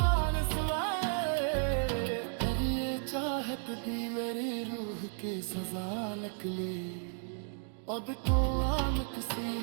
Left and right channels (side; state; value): left; silent; 55 dB below the other